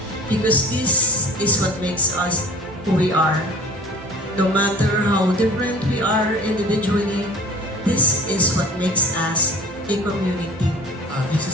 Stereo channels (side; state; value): both; normal; correlation 0.45